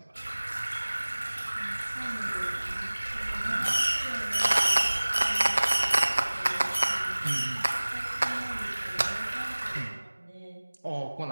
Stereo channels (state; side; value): inverted; both; correlation -1.00